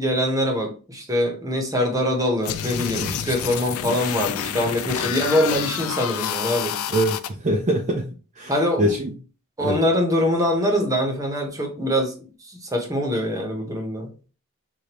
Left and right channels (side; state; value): both; normal; correlation 0.40